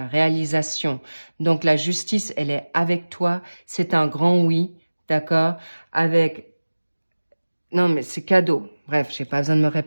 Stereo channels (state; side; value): inverted; both; correlation -1.00